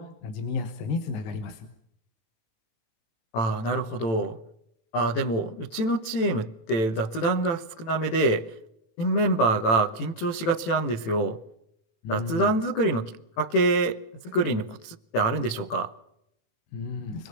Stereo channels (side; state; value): right; late; 18 ms